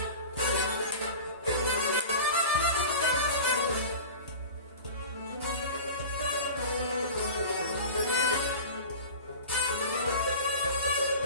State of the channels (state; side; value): inverted; both; correlation -0.34